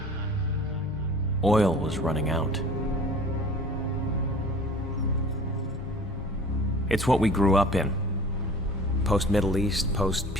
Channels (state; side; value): normal; both; correlation 0.44